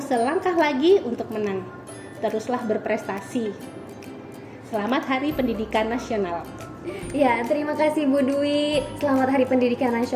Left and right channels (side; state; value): both; identical; correlation 1.00